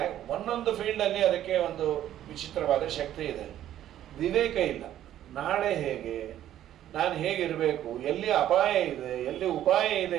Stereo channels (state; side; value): quieter; left; 11.9 dB